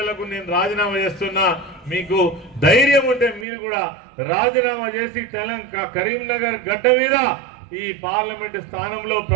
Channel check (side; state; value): left; drops out; at 3.5 s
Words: నేను రాజీనామా చేస్తున్నా, మీకు ధైర్యం ఉంటే మీరు కూడా రాజీనామా చేసి కరీంనగర్ గడ్డ మీద ఈ పార్లమెంట్ స్థానంలో